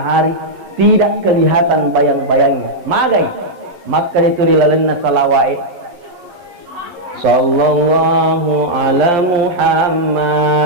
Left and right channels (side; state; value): left; late; 11 ms